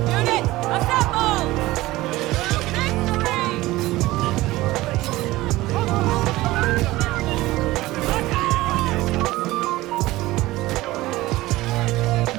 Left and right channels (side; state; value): left; quieter; 18.1 dB